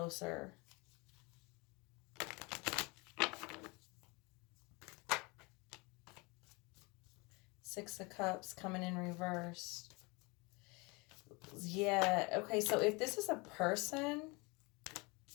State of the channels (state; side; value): quieter; right; 27.3 dB